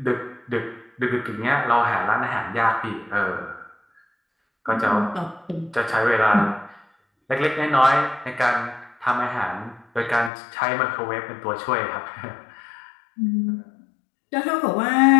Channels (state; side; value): drops out; right; at 10.3 s